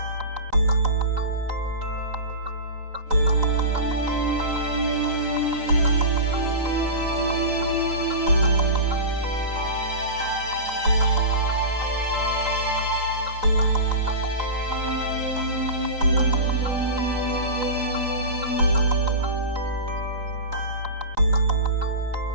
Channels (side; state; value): left; late; 3.9 ms